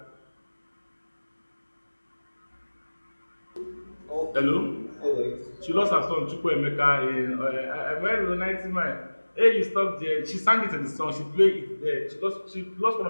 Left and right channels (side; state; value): both; inverted; correlation -1.00